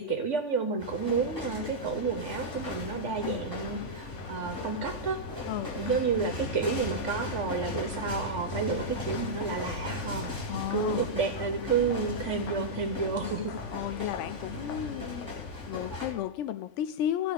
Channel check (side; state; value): right; late; 3.5 ms